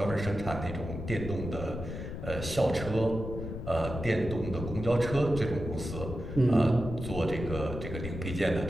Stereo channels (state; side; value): noise; left; rumble, 7 dB below the sound